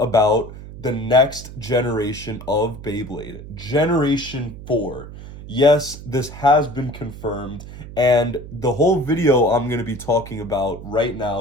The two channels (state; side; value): noise; right; hum, 14 dB below the sound